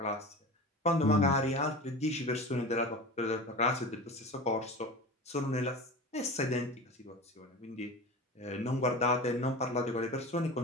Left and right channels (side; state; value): both; normal; correlation 0.32